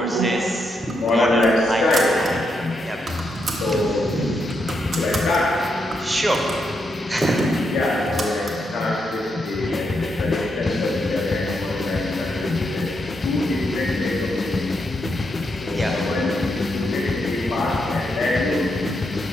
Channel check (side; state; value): both; normal; correlation 0.81